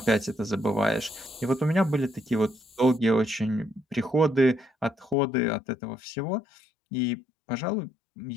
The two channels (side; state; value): right; drops out; at 5.2 s